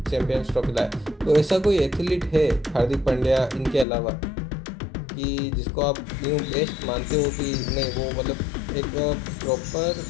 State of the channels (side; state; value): right; drops out; at 3.9 s